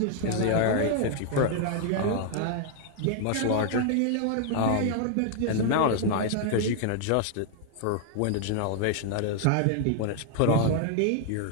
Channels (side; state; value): both; different; correlation 0.00